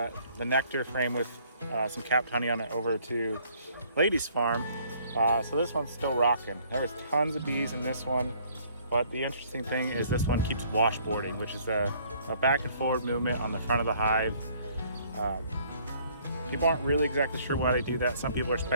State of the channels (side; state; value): both; inverted; correlation -0.60